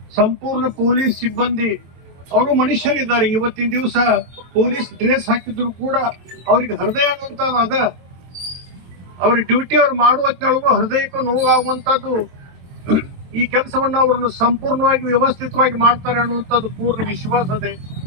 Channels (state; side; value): late; left; 23 ms